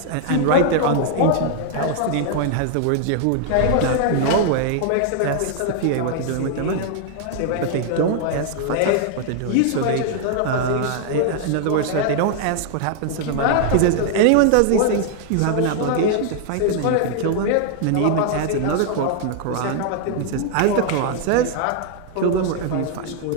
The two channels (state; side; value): different; both; correlation 0.00